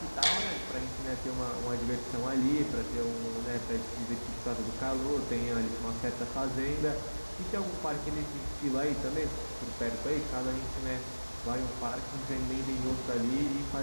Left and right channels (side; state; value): both; inverted; correlation -1.00